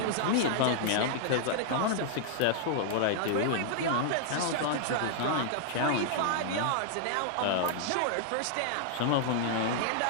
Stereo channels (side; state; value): both; different; correlation -0.01